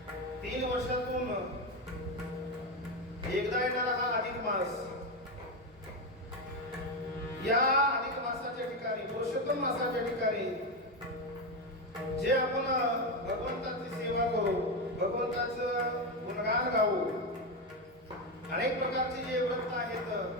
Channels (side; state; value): both; normal; correlation 0.11